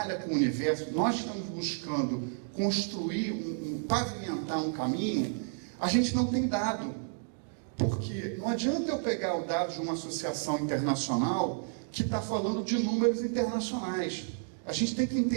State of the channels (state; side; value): silent; left; digital silence